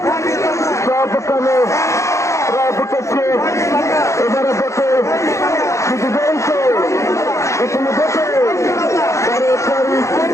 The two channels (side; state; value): right; late; 0.14 ms